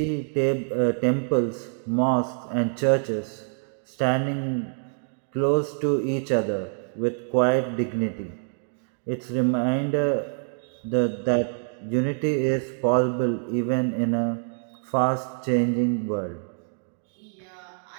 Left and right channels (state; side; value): silent; left; digital silence